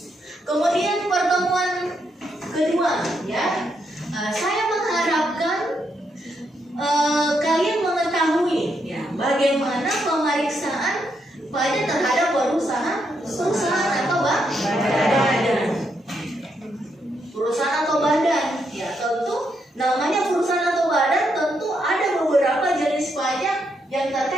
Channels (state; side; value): normal; both; correlation 0.79